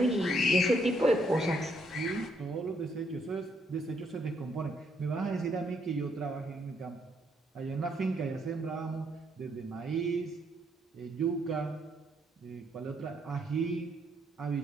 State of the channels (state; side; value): normal; both; correlation 0.73